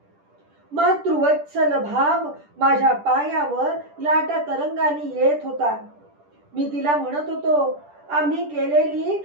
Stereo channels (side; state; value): left; late; 10 ms